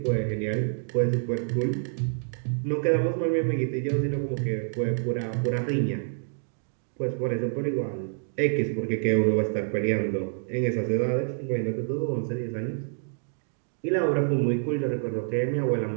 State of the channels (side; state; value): left; silent; digital silence